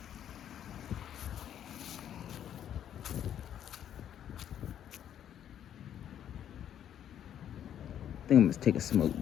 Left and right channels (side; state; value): right; quieter; 10.0 dB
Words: I think I'm gonna take a smoke